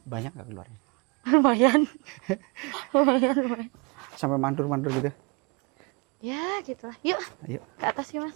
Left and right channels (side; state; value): left; quieter; 31.0 dB